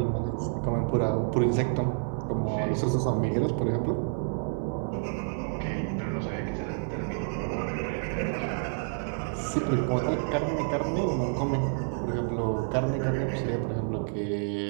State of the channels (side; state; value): left; silent; 59 dB below the other